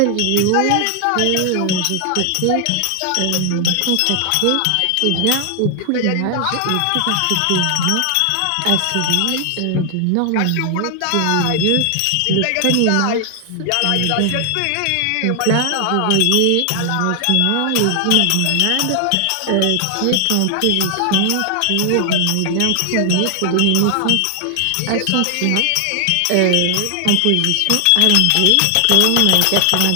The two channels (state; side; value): different; both; correlation 0.00